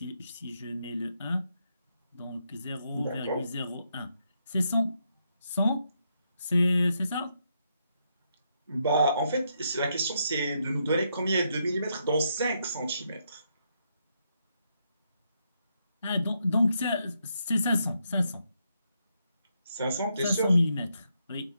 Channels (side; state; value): both; inverted; correlation -0.79